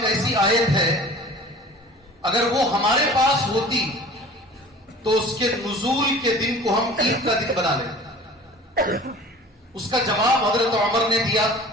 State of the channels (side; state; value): both; normal; correlation 0.43